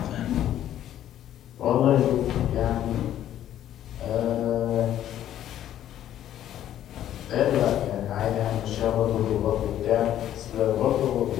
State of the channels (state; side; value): quieter; right; 11.6 dB